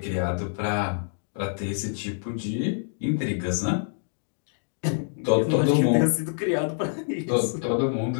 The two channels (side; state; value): right; silent; digital silence